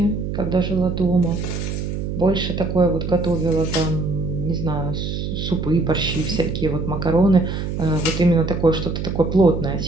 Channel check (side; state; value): right; noise; hum, 4 dB below the sound